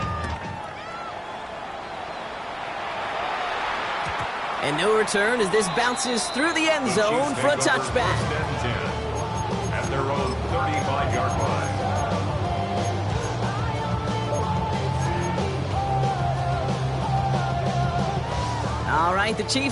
And no return as this bounces through the end zone for a touchback. At their own 35-yard line. All right, the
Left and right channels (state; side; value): identical; both; correlation 1.00